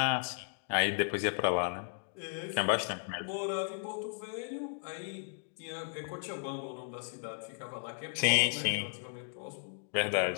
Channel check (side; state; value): right; silent; digital silence